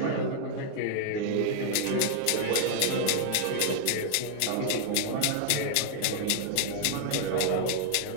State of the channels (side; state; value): both; different; correlation 0.00